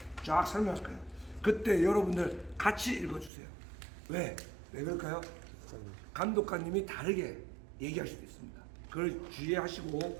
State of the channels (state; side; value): drops out; left; at 3.3 s